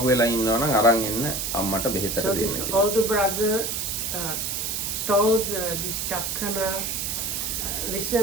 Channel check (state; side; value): noise; right; hiss, 2 dB below the sound